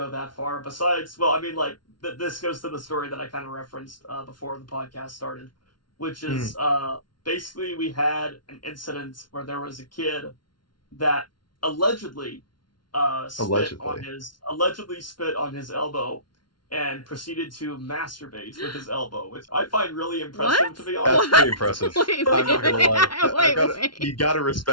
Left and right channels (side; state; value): right; late; 0.72 ms